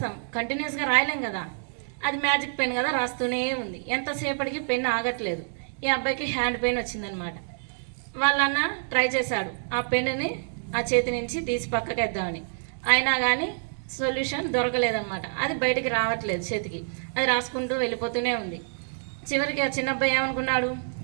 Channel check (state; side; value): silent; left; digital silence